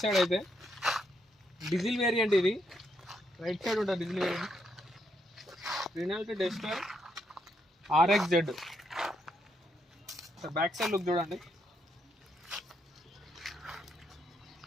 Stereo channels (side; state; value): both; normal; correlation 0.77